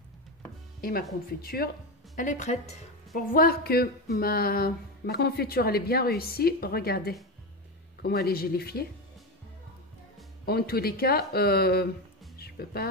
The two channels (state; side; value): normal; both; correlation 0.16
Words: Et ma confiture, elle est prête. Pour voir que ma confiture elle est bien réussie, regardez comment elle est gélifiée. En tous les cas, je ne peux